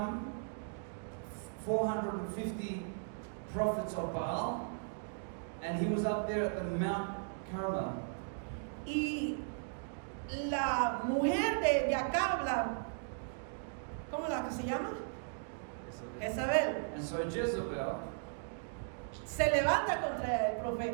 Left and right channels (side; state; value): left; silent; digital silence